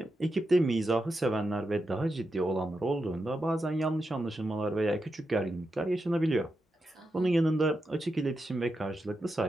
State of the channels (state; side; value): normal; both; correlation 0.87